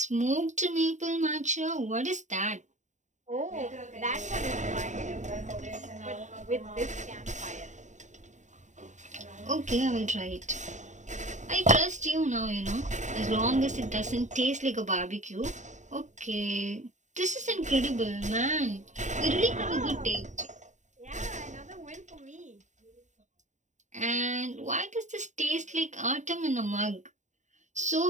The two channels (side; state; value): left; late; 0.35 ms